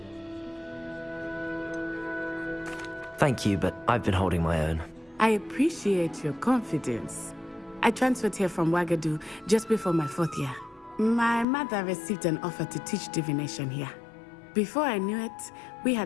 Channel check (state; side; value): drops out; right; at 11.5 s